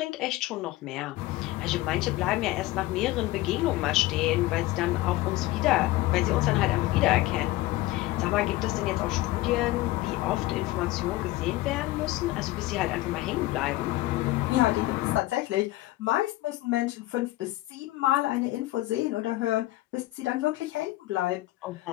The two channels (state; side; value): quieter; right; 17.8 dB